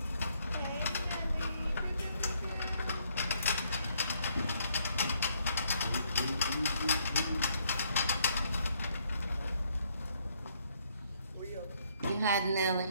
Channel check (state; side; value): inverted; both; correlation -0.70